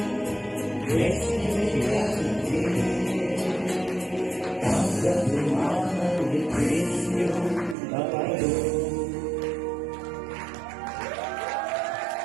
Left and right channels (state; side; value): drops out; left; at 7.8 s